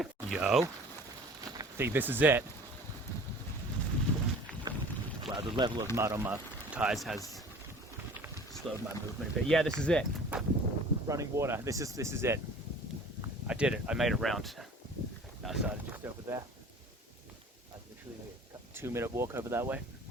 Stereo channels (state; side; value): normal; both; correlation 0.45